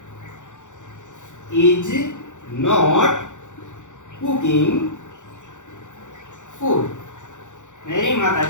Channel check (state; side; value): late; right; 0.85 ms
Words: is not cooking food. मेरी माता